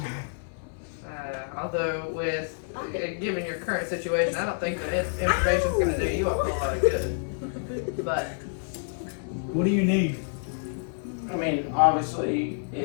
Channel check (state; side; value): silent; right; digital silence